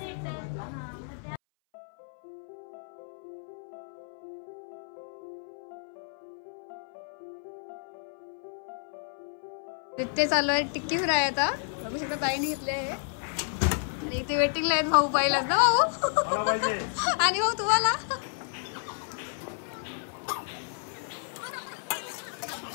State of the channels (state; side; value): silent; right; 57 dB below the other